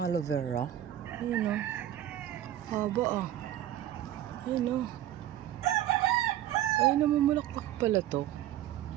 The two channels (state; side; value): quieter; left; 12.5 dB